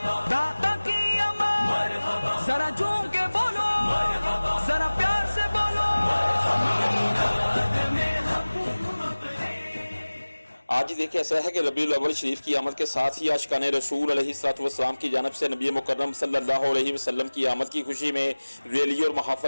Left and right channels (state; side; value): inverted; both; correlation -1.00